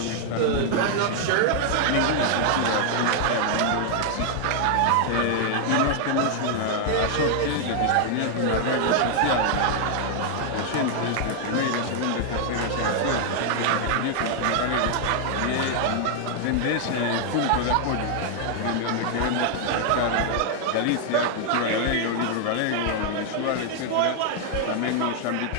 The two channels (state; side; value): different; both; correlation 0.00